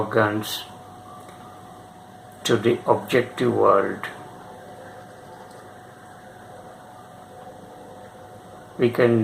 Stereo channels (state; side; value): identical; both; correlation 1.00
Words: to the objective world. We